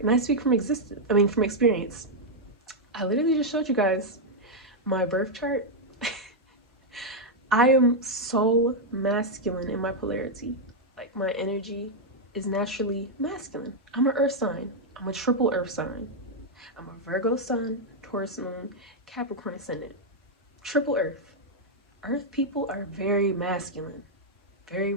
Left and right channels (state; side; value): normal; both; correlation -0.02